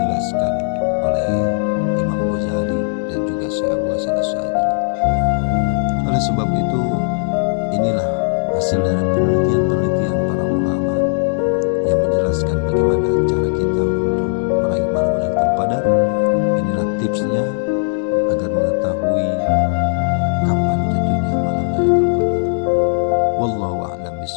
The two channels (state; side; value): silent; right; digital silence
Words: oleh Imam Ghazali dan juga Syekh Abu Hasan Asy'adzili. Oleh sebab itu, inilah hasil dari penelitian-penelitian para ulama yang menjelaskan bagaimana cara kita untuk meraih malam Lailatul Qadar. Inilah tipsnya agar mengetahui kapan jatuhnya malam Lailatul Qadar. Wallahu a'lam